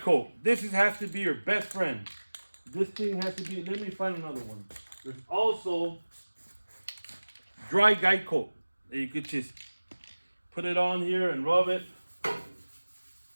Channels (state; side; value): inverted; both; correlation -1.00